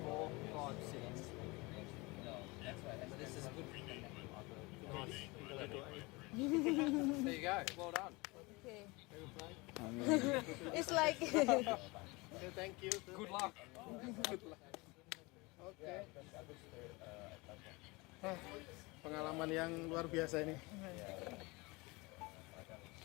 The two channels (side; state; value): right; quieter; 24.8 dB